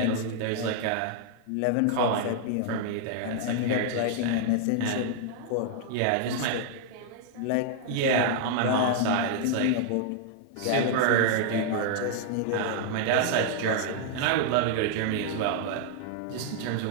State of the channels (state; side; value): different; both; correlation 0.00